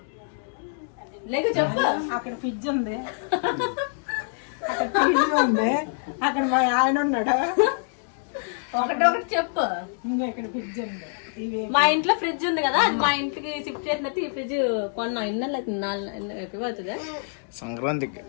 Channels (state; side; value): silent; right; digital silence